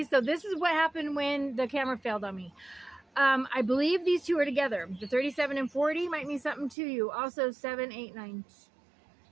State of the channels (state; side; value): drops out; left; at 6.8 s